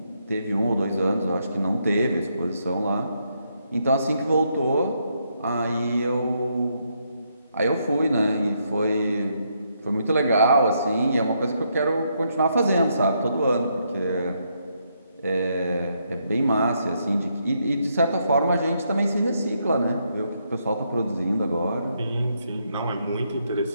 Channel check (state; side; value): inverted; both; correlation -0.77